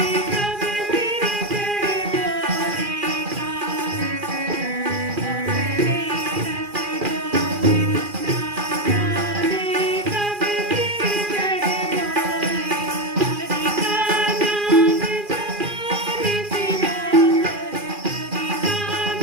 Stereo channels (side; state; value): left; late; 2.4 ms